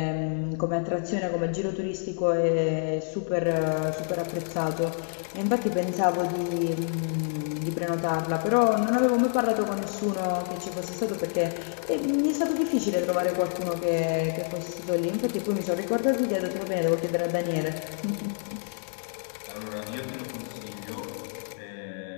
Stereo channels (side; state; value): right; silent; digital silence